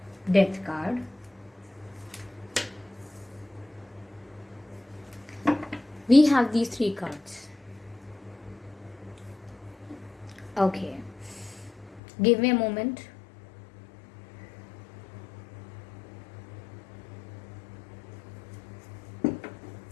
Death card, we have these three cards, okay. Give me a moment.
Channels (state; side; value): drops out; right; at 12.0 s